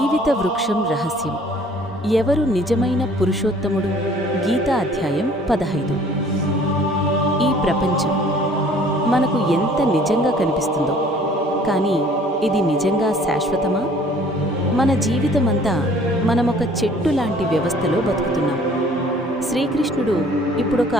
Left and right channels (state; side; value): normal; both; correlation 0.54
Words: వృక్షం రహస్యం. ఎవరు నిజమైన పురుషోత్తముడు? గీతా అధ్యాయం 15. ఈ ప్రపంచం మనకు ఎంత నిజంగా కనిపిస్తుందో, కానీ ఇది నిజంగా శాశ్వతమా? మన జీవితమంతా మనమొక చెట్టు లాంటి వ్యవస్థలో బతుకుతున్నాం. శ్రీకృష్ణుడు ఇప్పుడొక